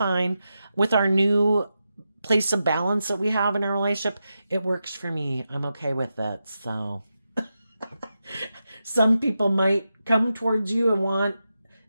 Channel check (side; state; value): both; inverted; correlation -0.89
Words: with our new place of balance that we have in our relationship. It works for me. I'm okay with it. So some people might come towards you and want,